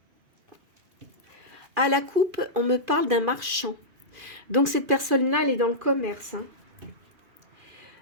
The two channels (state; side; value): late; left; 2.4 ms